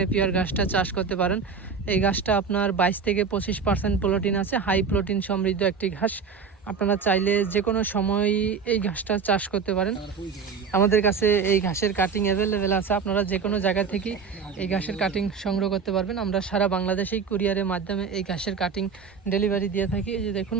ঘাসটা চাষ করতে পারেন। এই ঘাসটা আপনার 22 থেকে 25% প্রোটিন আছে, হাই প্রোটিন সমৃদ্ধ একটি ঘাস। আপনারা চাইলে যে কোনো সময় এই ঘাসটা চাষ করতে পারেন। আমাদের কাছে এই ঘাসের কাটিং অ্যাভেলেবেল আছে। আপনারা যে কোনো জায়গা থেকে এই ঘাসের কাটিং সংগ্রহ করতে পারবেন। আমরা সারা বাংলাদেশেই কুরিয়ারের মাধ্যমে এই ঘাসের কাটিং ডেলিভারি দিয়ে থাকি। এই যে দেখুন,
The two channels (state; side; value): quieter; left; 5.7 dB